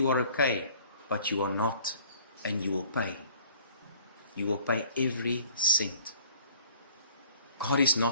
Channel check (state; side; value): inverted; both; correlation -0.52